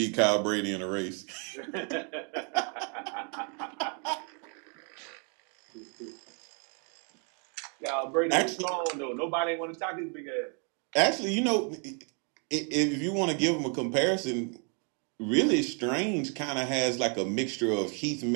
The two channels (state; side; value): quieter; left; 38.6 dB